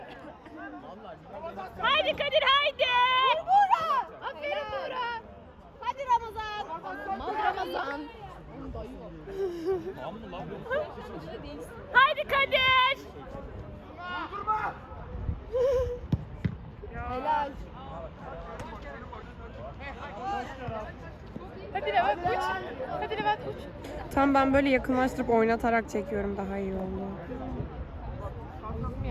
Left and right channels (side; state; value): both; identical; correlation 1.00